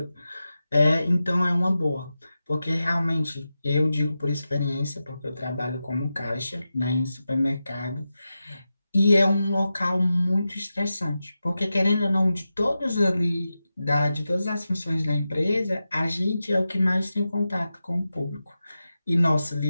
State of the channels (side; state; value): both; inverted; correlation -0.92